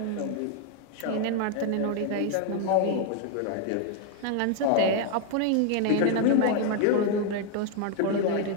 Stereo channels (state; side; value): different; both; correlation 0.00